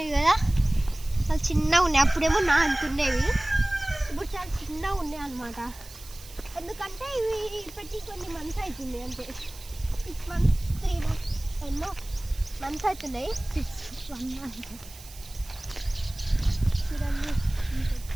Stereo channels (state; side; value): noise; right; hiss, 18 dB below the sound